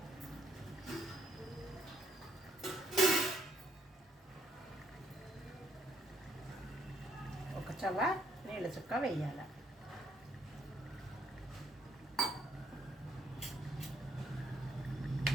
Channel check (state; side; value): normal; both; correlation 0.71